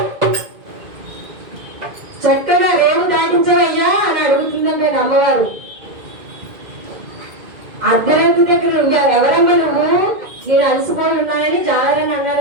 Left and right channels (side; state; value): left; late; 2.1 ms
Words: చక్కగా రేవు దాటించవయ్యా అని అడుగుతుందండి అమ్మవారు. అర్ధరాత్రి దగ్గర ఎవరమ్మా నువ్వు, నేను అలసిపోయి ఉన్నానని జాలరని